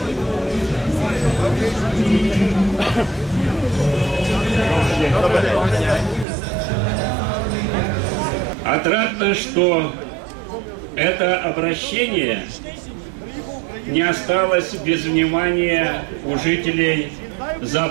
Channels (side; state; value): left; drops out; at 6.2 s